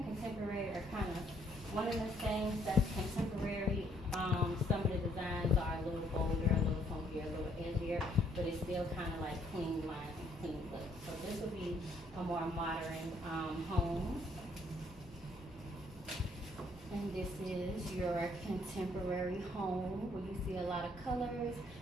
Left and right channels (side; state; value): both; normal; correlation 0.67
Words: contemporary are kind of one of the same. That's contemporary. Some of the designs are a little bolder, a little funkier, a little edgier, but it's still kind of like clean lines and clean look. So this will be a more modern home. And this is your contemporary home where you see a lot of colors,